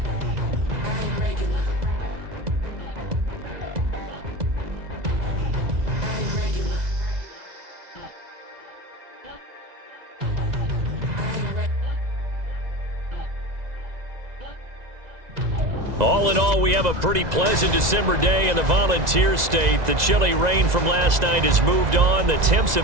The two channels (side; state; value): left; late; 2.0 ms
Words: All in all, we have a pretty pleasant December day in the Volunteer State. The chilly rain from last night has moved on. The temps